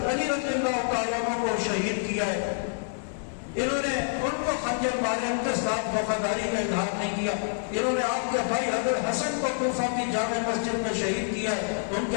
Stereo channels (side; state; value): right; silent; 60 dB below the other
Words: علی رضی اللہ تعالیٰ عنہ کو شہید کیا ہے، انہوں نے ان کو خنجر مارے، ان کے ساتھ وفاداری کا اظہار نہیں کیا۔ انہوں نے آپ کے بھائی حضرت حسن کو کوفہ کی جامع مسجد میں شہید کیا ہے، ان کے